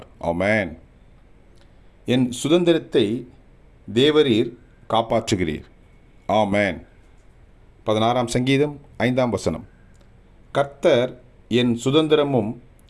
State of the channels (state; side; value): identical; both; correlation 1.00